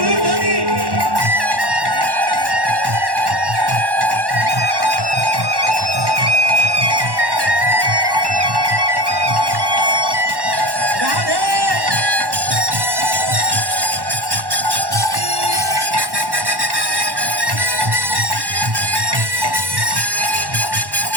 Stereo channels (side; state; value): left; late; 1.1 ms